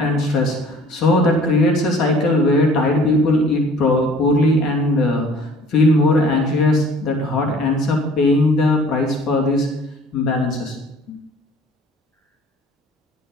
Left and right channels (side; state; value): both; normal; correlation 0.51